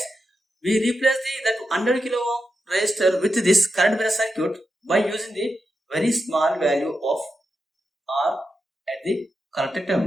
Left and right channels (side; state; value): both; normal; correlation 0.87